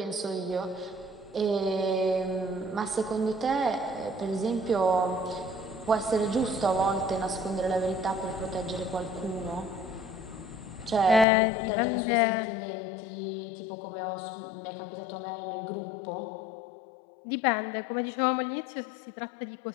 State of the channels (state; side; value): drops out; right; at 11.2 s